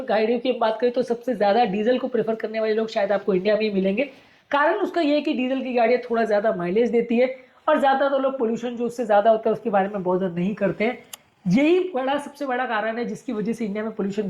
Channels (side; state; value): both; identical; correlation 1.00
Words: गाड़ियों की बात करें तो सबसे ज्यादा डीजल को प्रेफर करने वाले लोग शायद आपको इंडिया में ही मिलेंगे। कारण उसका ये है कि डीजल की गाड़ियां थोड़ा ज्यादा माइलेज देती है और ज्यादा तो लोग पोल्यूशन जो उससे ज्यादा होता है उसके बारे में बहुत नहीं करते हैं। यही सबसे बड़ा कारण है जिसकी वजह से इंडिया में पोल्यूशन